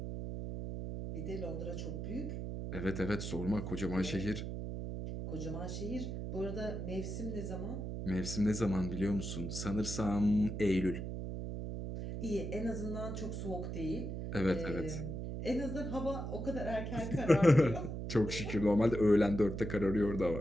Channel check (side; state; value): right; noise; hum, 5 dB below the sound